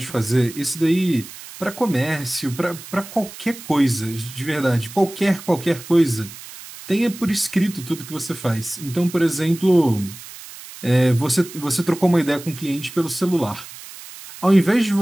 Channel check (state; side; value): noise; right; hiss, 15 dB below the sound